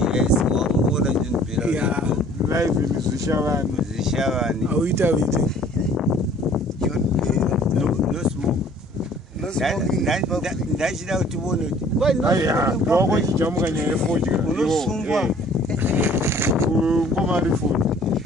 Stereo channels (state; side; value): normal; both; correlation 0.53